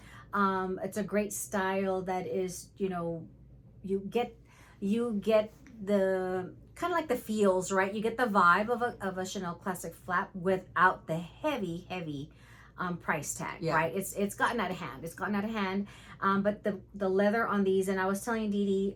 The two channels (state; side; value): identical; both; correlation 1.00